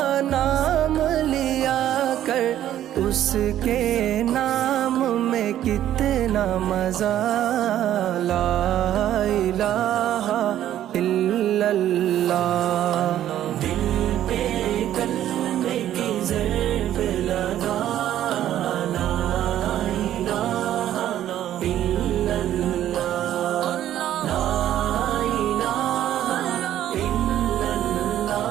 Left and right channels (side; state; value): left; quieter; 11.9 dB